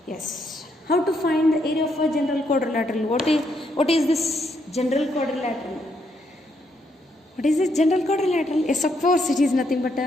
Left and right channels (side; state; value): both; normal; correlation 0.75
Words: Yes. How to find the area of a general quadrilateral? What is this general quadrilateral? What is this general quadrilateral? Yes, of course, it is nothing but